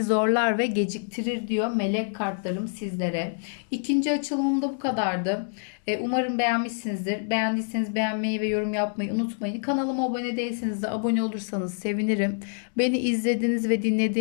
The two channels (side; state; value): right; silent; 61 dB below the other